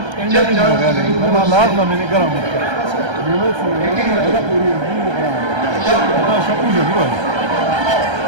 ما لازم من الكلام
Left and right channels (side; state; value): left; late; 1.3 ms